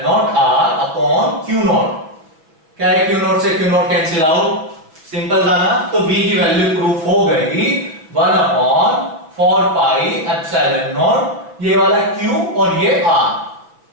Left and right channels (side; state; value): left; late; 6.1 ms